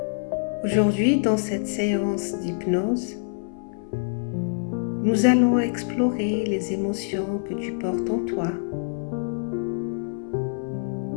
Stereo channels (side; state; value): right; silent; 60 dB below the other